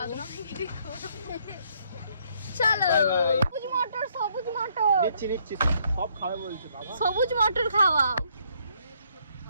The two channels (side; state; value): both; inverted; correlation -0.69